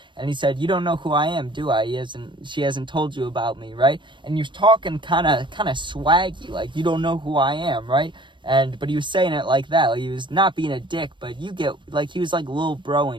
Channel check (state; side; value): late; left; 0.23 ms